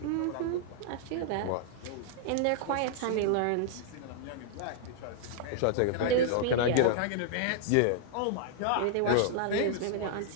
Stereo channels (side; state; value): both; different; correlation -0.01